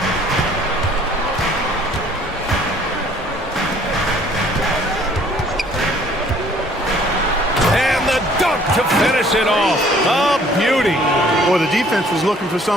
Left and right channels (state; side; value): normal; both; correlation 0.58